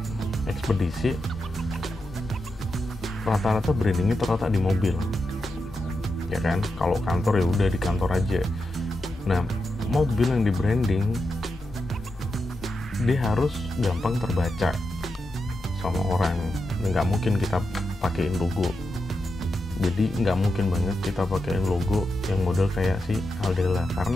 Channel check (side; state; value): both; normal; correlation 0.88